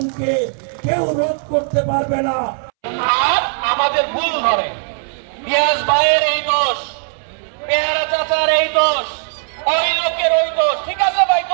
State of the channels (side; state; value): left; silent; 67 dB below the other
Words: কেউ রোধ করতে পারবে না। আর আমাদের ভুল ধরে রিয়াজ ভাইয়ের এই দোষ, পেয়ারা চাচার এই দোষ, ওই লোকের ওই দোষ। ঠিক আছে ভাই,